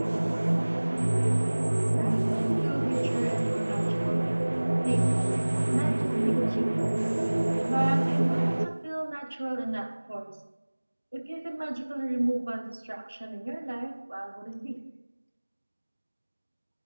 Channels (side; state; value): both; inverted; correlation -1.00